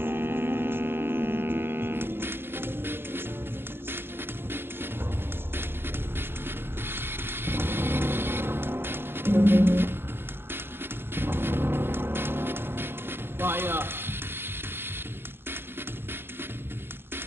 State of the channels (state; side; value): late; left; 0.11 ms